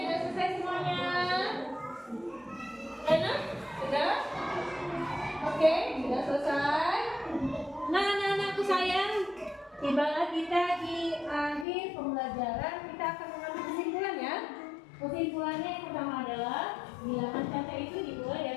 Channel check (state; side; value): drops out; right; at 11.7 s